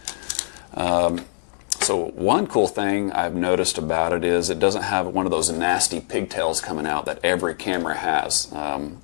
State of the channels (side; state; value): right; silent; digital silence